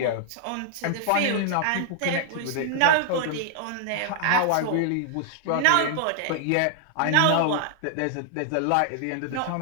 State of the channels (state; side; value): different; both; correlation 0.00